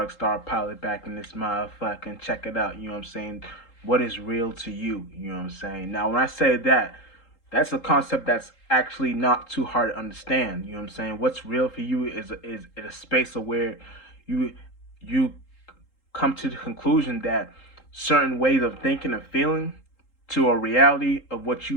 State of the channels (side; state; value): right; late; 3.8 ms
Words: Star Pilot back in this motherfucking check it out. You know what I'm saying? What is real to you? You know what I'm saying? Now, when I say that, that's a concept that's actually not too hard to understand. You know what I'm saying? What's real for you is a space of where you you come to the conclusion that certain ways of thinking and feeling to a reality of what